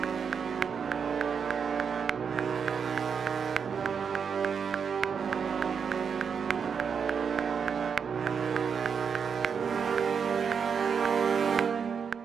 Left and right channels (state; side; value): quieter; left; 6.5 dB